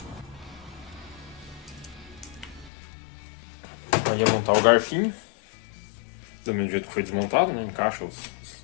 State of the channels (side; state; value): right; drops out; at 2.7 s